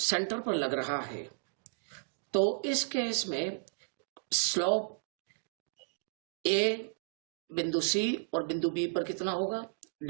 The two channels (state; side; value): silent; left; digital silence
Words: पर लग रहा है। तो इस केस में स्लोप A बिंदु C और बिंदु B पर कितना होगा,